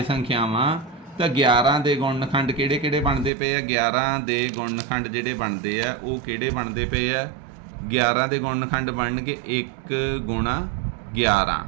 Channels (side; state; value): left; drops out; at 3.3 s